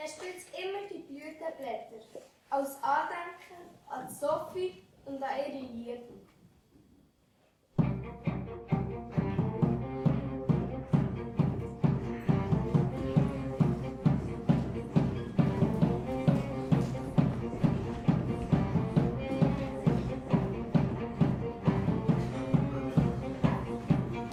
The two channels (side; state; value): both; identical; correlation 1.00